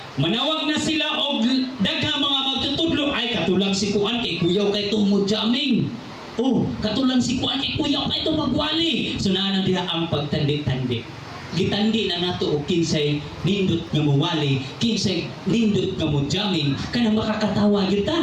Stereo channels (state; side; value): identical; both; correlation 1.00